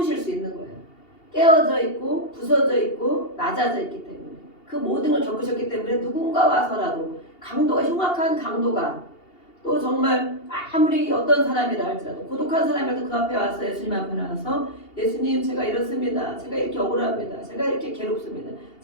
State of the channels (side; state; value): right; late; 2.8 ms